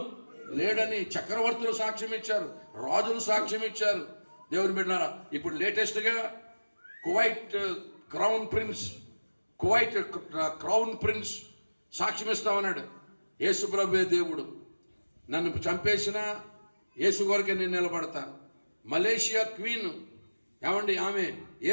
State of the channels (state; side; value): inverted; both; correlation -1.00